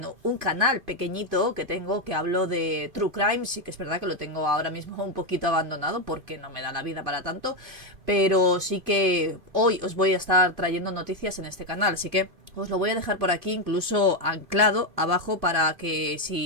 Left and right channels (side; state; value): left; late; 2.5 ms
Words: un canal pequeñito que tengo, que hablo de True Crime. Sí que es verdad que lo tengo ahora mismo un poquito abandonado porque no me da la vida para tanto, pero sí que hoy os voy a estar trayendo noticias en este canal, así que os lo voy a dejar por aquí incluso anclado abajo para que